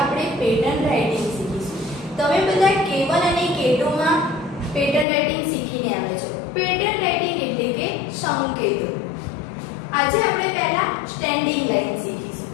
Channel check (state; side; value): drops out; right; at 5.1 s